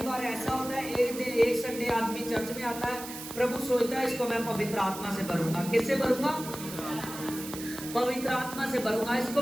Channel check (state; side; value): noise; right; hiss, 11 dB below the sound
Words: बार ऐसा होता है, एक दिन एक संडे आदमी चर्च में आता है, प्रभु सोचता है इसको मैं पवित्र आत्मा से भरूंगा। किससे भरूंगा? पवित्र आत्मा से भरूंगा, इसको